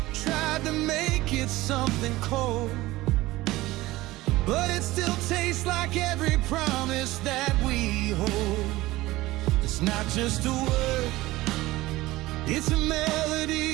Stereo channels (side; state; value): left; quieter; 18.4 dB